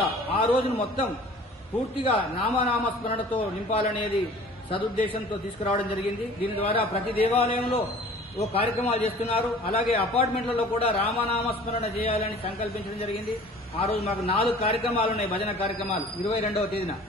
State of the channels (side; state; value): both; normal; correlation 0.47